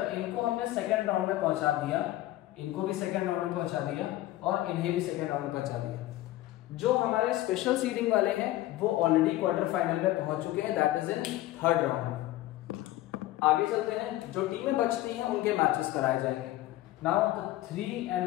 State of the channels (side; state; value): right; quieter; 15.7 dB